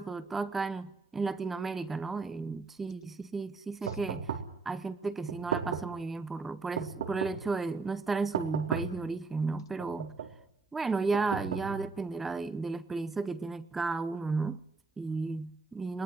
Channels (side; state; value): left; quieter; 4.1 dB